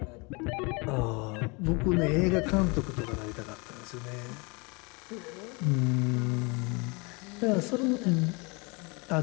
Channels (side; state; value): right; quieter; 29.2 dB